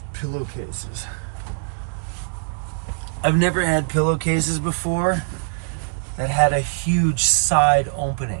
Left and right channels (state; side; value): silent; left; digital silence